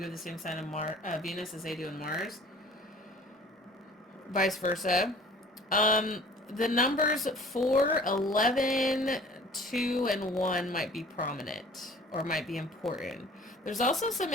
have the same sign in Venus as they do in Mars. Vice versa. The numbers 4, 11, 2, and 1 might be prominent or might be important. There's also some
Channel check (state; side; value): normal; both; correlation 0.49